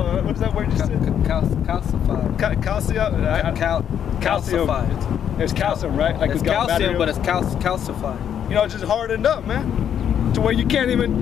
is that word you said? Calcified. Calcium. It's calcium, right? Like it's calcium, but it's calcified. You know, it's just hardened up, man. To where you can't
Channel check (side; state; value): right; quieter; 9.0 dB